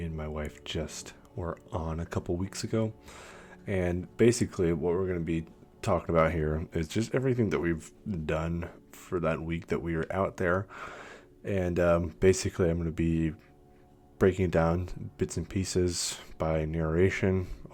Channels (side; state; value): both; identical; correlation 1.00